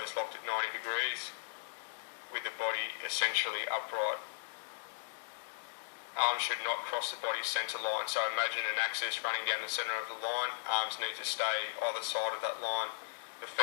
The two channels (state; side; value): silent; right; digital silence